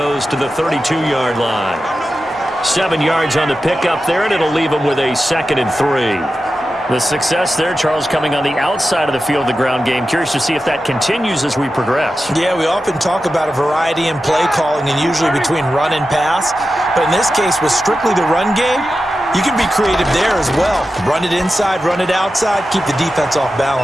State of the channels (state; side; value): normal; both; correlation 0.92